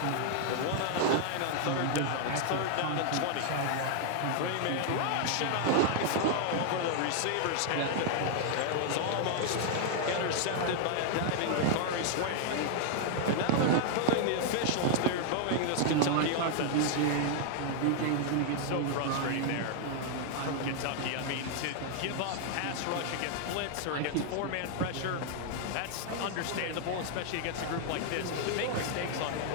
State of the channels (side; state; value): both; different; correlation 0.00